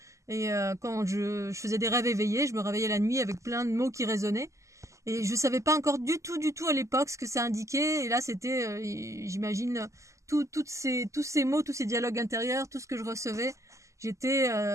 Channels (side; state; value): left; late; 0.15 ms